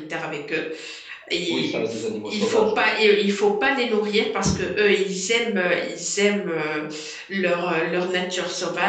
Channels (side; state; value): both; identical; correlation 1.00